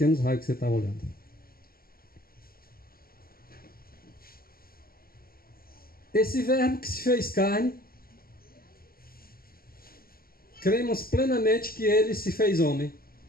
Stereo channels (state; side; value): late; right; 0.43 ms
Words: raios que você está olhando. Esse verbo que se fez carne, cremos plenamente que ele se fez homem.